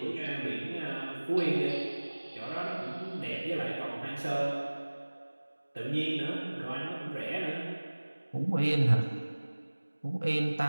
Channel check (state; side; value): inverted; both; correlation -1.00